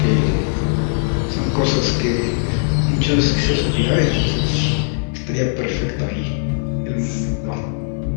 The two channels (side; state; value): right; silent; 66 dB below the other